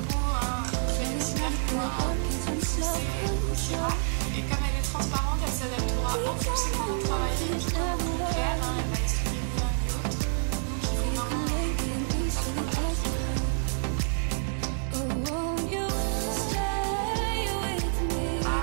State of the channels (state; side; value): silent; left; digital silence